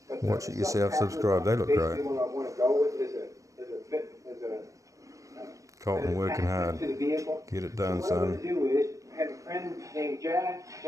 But watch it yourself, subscribe. They look great. What I want to go with is Colton working hard. Get it done, son. What I'm going to do is, I have a friend named Jack.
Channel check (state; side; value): late; left; 0.16 ms